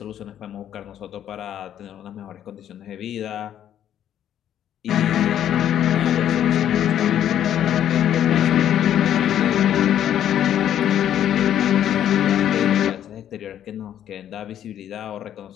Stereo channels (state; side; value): quieter; right; 10.6 dB